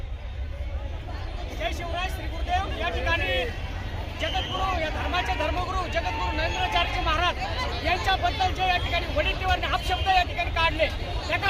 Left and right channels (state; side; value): identical; both; correlation 1.00